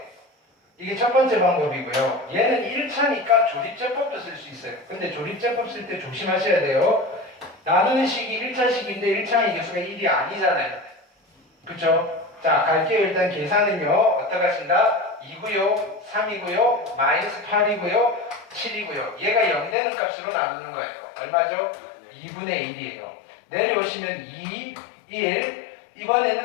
이게 첫 번째 방법이고요. 얘는 1차니까 조립제법도 쓸 수 있어요. 근데 조립제법 쓸 때 조심하셔야 돼요. 나누는 식이 1차식인데 1차의 개수가 1이 아니잖아요. 그쵸? 자, 갈게요. 일단 계산은요. 어떻게 하신다? 2고요, 3이고요, 마이너스 8이고요, 7이고요. 얘가 0 되는 값으로 나누는 거예요. 얼마죠? 2분의 1이에요. 내려오시면 2, 1.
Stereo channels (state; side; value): drops out; right; at 19.8 s